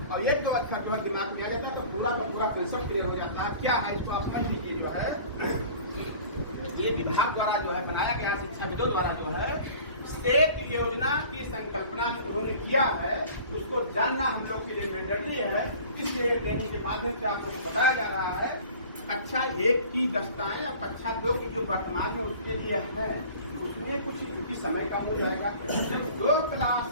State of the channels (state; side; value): inverted; both; correlation -0.44